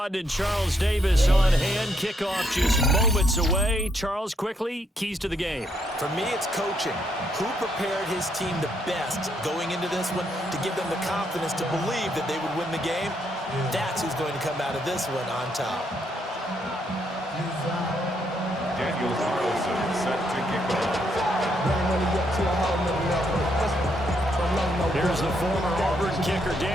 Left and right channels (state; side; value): normal; both; correlation 0.75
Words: and Charles Davis on hand. Kickoff just moments away. Charles, quickly, keys to the game. For me, it's coaching. Who prepared his team the best going into this one to give them the confidence to believe that they would win the game? That's who's going to come out of this one on top. Daniel Carlson set to kick off. Here's the former Auburn kicker,